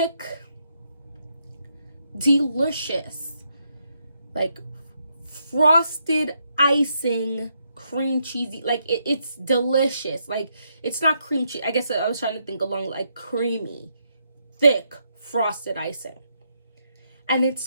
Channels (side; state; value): both; inverted; correlation -0.78